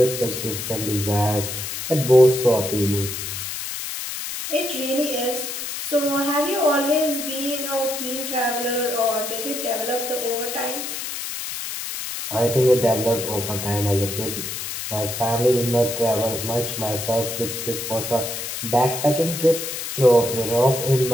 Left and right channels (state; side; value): noise; left; hiss, 6 dB below the sound